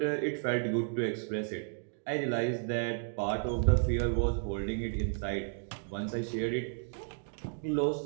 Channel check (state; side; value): silent; left; digital silence